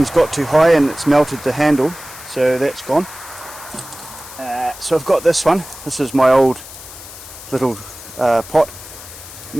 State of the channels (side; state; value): left; noise; hiss, 15 dB below the sound